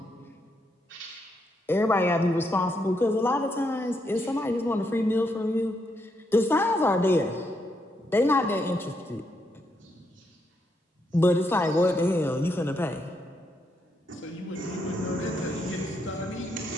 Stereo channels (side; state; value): both; normal; correlation 0.79